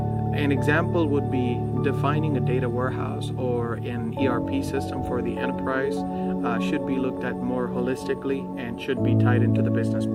An example would be defining a data warehouse or an ERP system for the enterprise should be looked at more holistically and should be tied into the business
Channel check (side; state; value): both; identical; correlation 1.00